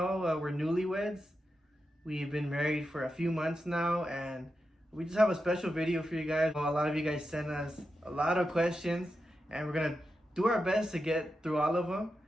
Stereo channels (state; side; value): normal; both; correlation 0.89